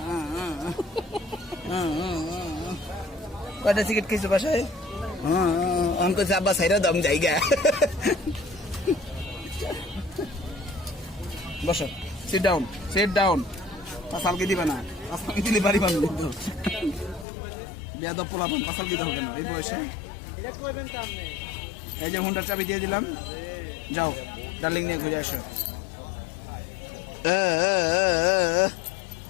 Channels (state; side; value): drops out; right; at 17.2 s